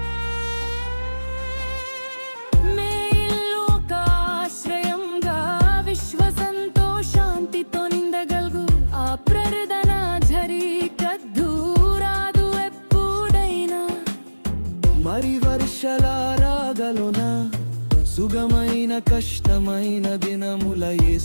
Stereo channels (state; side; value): inverted; both; correlation -1.00